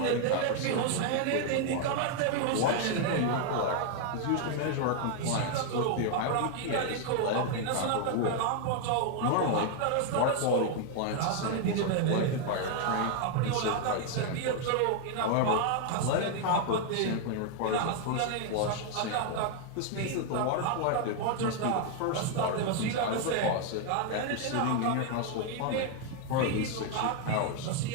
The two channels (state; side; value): different; both; correlation 0.00